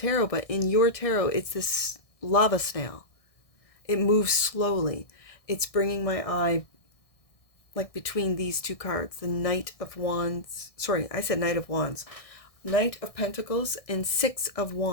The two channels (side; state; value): right; late; 1.6 ms